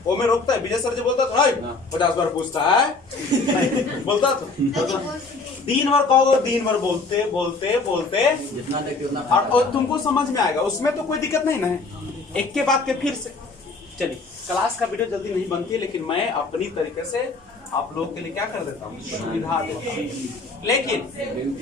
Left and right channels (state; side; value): quieter; right; 3.8 dB